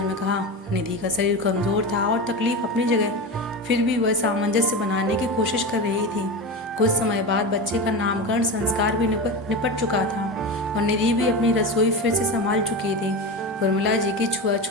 में कहा। निधि का शरीर कमजोर था और तकलीफ अपनी जगह, फिर भी वह सामंजस्य बनाने की कोशिश कर रही थी। कुछ समय बाद बच्चे का नामकरण संस्कार भी निपट चुका था और निधि भी अपनी रसोई फिर से संभाल चुकी थी। उर्मिला जी की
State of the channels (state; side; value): normal; both; correlation 0.23